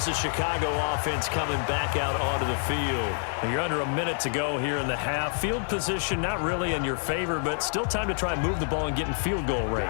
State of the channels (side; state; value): right; silent; 60 dB below the other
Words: the Chicago offense coming back out onto the field. You're under a minute to go here in the half. Field position not really in your favor, but still time to try and move the ball and get in field goal